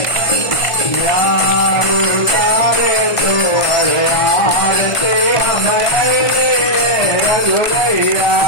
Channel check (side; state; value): right; late; 1.5 ms